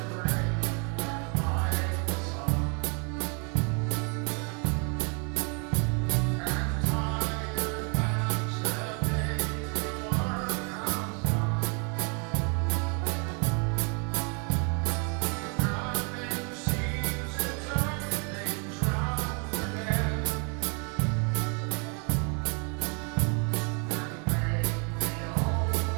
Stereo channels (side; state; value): left; quieter; 36.3 dB